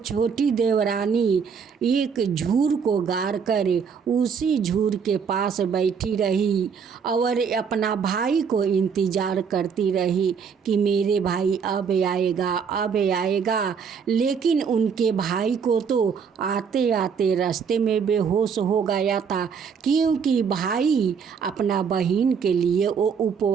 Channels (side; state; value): left; quieter; 6.4 dB